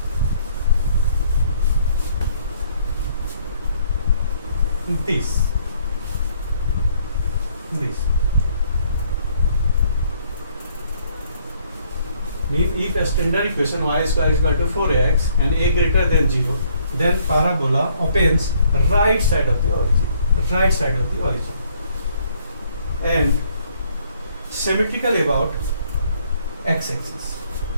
This. Mean if a standard equation y square is equal to 4ax and a greater than 0, then parabola opens right side of the origin, and symmetrical about x-axis.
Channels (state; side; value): inverted; both; correlation -0.65